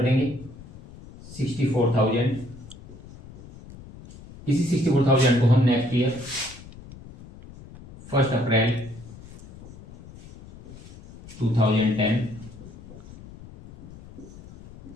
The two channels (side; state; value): left; noise; rumble, 18 dB below the sound